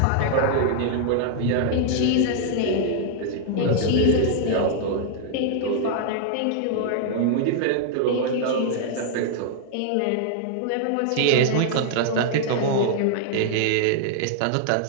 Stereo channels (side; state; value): both; different; correlation -0.01